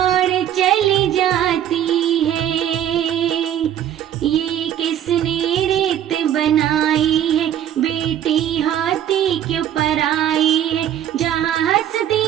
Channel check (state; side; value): quieter; left; 10.7 dB